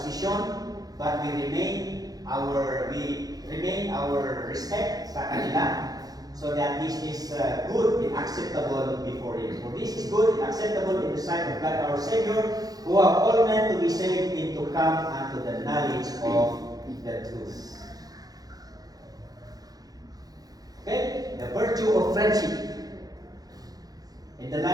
but we remain our respect sa kanila, so that this is good and acceptable before Him. For this is good and acceptable in the sight of God our Savior, who have all men to be saved and to come unto the knowledge of the truth. Okay? The virtue of friendship in the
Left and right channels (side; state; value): left; late; 0.18 ms